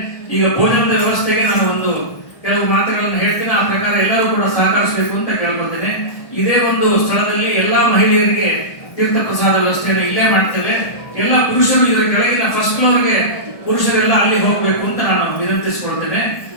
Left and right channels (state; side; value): late; right; 1.3 ms